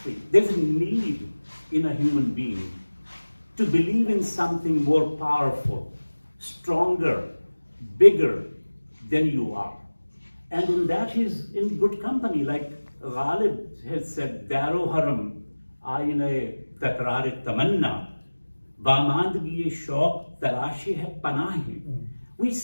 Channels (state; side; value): inverted; both; correlation -1.00